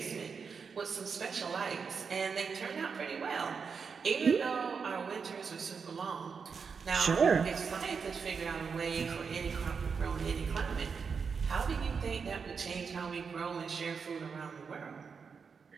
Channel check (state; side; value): quieter; left; 5.7 dB